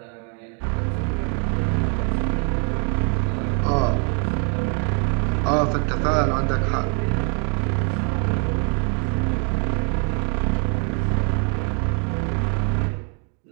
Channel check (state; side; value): quieter; left; 38.9 dB